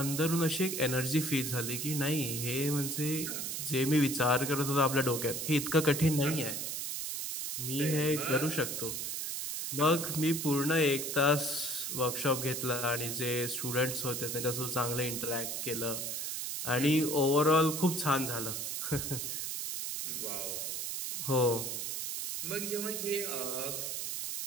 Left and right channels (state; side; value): noise; right; hiss, 3 dB below the sound